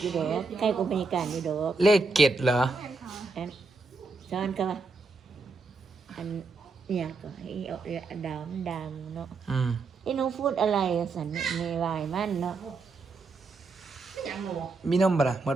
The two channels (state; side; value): quieter; left; 3.9 dB